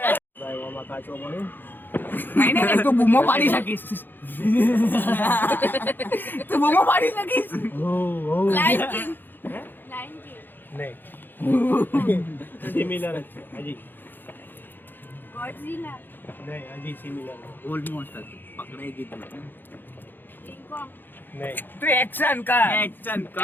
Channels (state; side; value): late; right; 0.093 ms